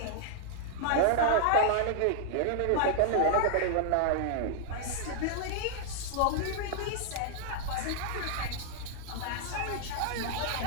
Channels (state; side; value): different; both; correlation -0.01